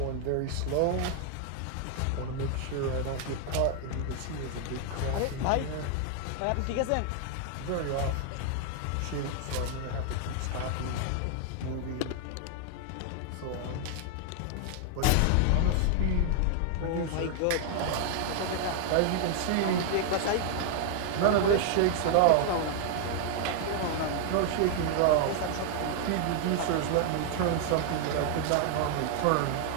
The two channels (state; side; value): different; both; correlation 0.00